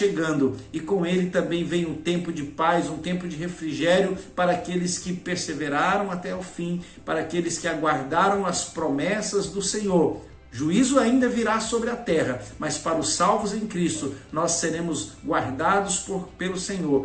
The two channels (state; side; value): identical; both; correlation 1.00